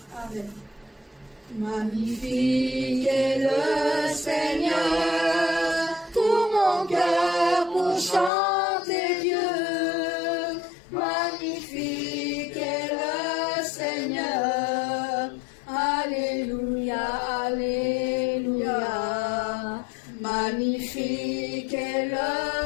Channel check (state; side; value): drops out; right; at 8.3 s